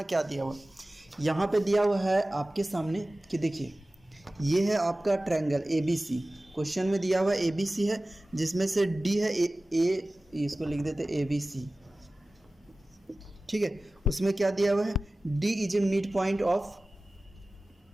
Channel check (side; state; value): both; normal; correlation 0.97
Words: क्या दिया हुआ, यहाँ पे दिया हुआ है आपके सामने कि देखिए ये है आपका triangle A B C. Question में दिया हुआ ए बी सी है, जिसमें से डी है ए, इसको लिख देते ए बी सी। ठीक है, उसमें क्या दिया हुआ है, D is a mid point of